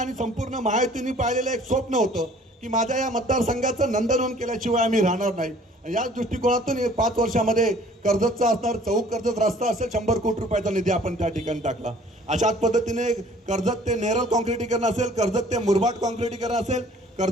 संपूर्ण महायुतीने पाहिलेलं एक स्वप्न होतं की माझ्या या मतदारसंघाचं नंदनवन केल्याशिवाय आम्ही राहणार नाही. याच दृष्टिकोनातून 5 वर्षामध्ये कर्जतचा असणार चौक कर्जत रस्ता असेल 100 कोटी रुपयाचा निधी आपण त्या ठिकाणी टाकला. अशाच पद्धतीने कर्जत ते नेरळ कॉन्क्रिटीकरण असेल, कर्जत ते मुरबाड कॉन्क्रिटीकरण असेल,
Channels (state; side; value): normal; both; correlation 0.54